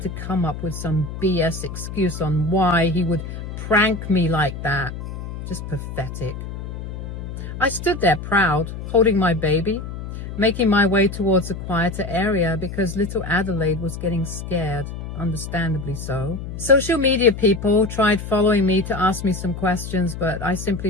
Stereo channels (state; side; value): noise; left; hum, 8 dB below the sound